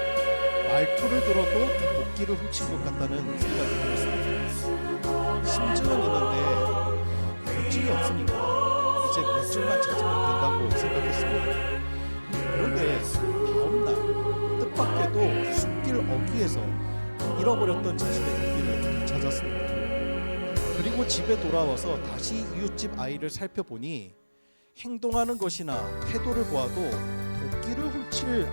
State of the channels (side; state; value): both; inverted; correlation -1.00